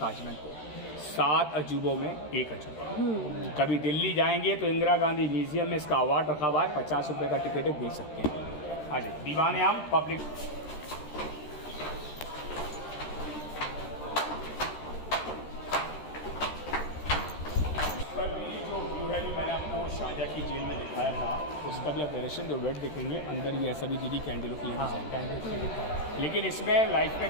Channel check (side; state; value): right; late; 13 ms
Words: को। 7 अजूबों में एक अजूबा। कभी दिल्ली जाएंगे तो इंदिरा गांधी म्यूजियम में इसका अवार्ड रखा हुआ है, 50 रुपये का टिकट देख सकते हैं। हाँ जी, दीवाने आम पब्लिक। मैंने आपको शाहजहाँ की जेल में दिखाया था, उसका भी आप डायरेक्शन जो वेट देखेंगे अंदर भी ऐसा भी दीदी कैंडलों के लिए। लेकिन इसमें लाइफ